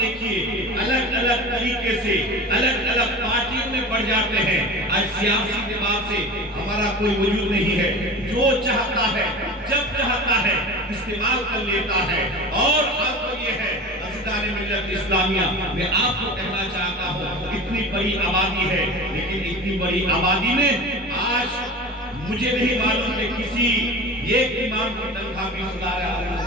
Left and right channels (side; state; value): both; normal; correlation 0.33